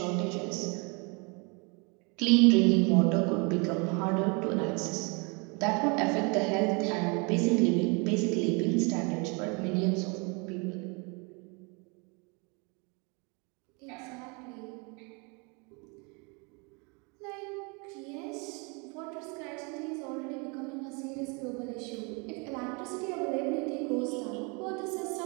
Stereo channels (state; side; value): quieter; left; 31.7 dB